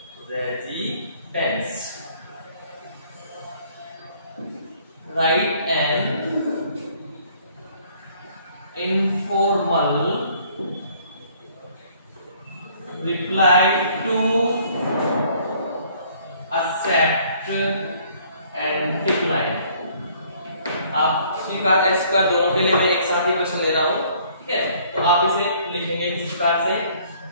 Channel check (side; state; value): both; inverted; correlation -0.60